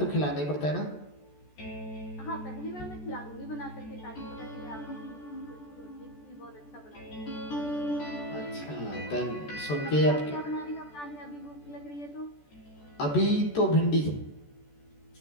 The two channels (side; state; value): right; late; 14 ms